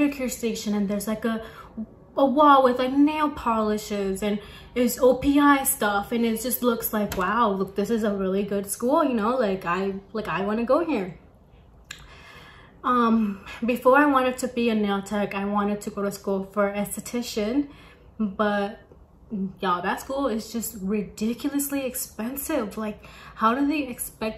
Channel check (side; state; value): both; identical; correlation 1.00